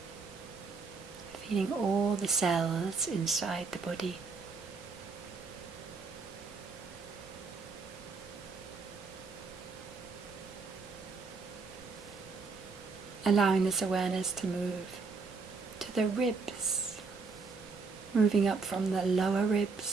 feeling all the cells inside the body. Allowing this awareness to move to the ribs, moving up from the lower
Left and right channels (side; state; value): left; quieter; 4.6 dB